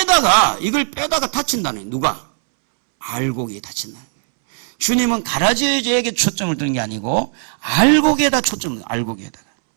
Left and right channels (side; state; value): left; silent; 67 dB below the other